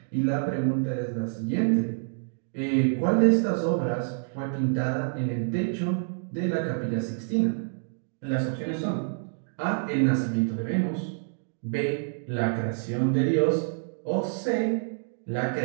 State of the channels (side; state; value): left; silent; digital silence